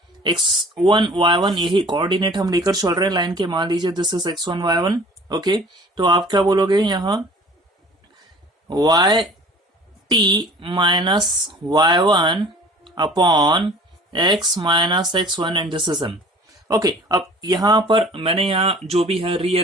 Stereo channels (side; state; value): both; normal; correlation 0.47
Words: x1 y1, यही कोऑर्डिनेट हम लेकर चल रहे हैं लाइन के. मान लीजिए this is x1 y1. Okay, तो आप क्या बोलोगे यहाँ, y minus y1 upon x minus x1 and this is m. Okay, अब यहां पर मैंने यहाँ जो भी है